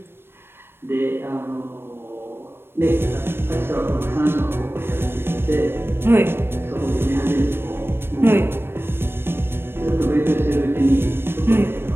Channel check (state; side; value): late; left; 0.11 ms